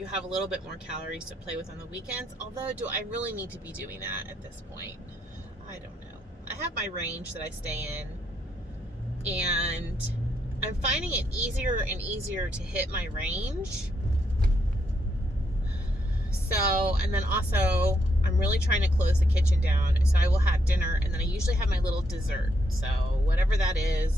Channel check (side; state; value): both; normal; correlation 0.77